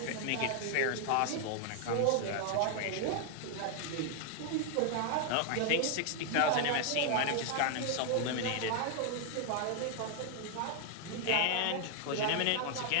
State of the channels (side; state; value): both; different; correlation 0.00